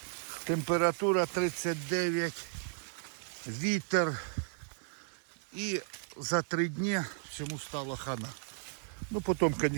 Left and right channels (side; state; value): left; silent; 55 dB below the other